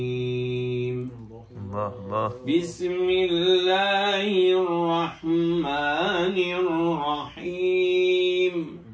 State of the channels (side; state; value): both; identical; correlation 1.00